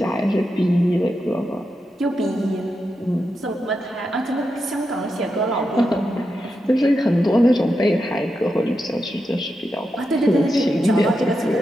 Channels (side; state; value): both; normal; correlation 0.87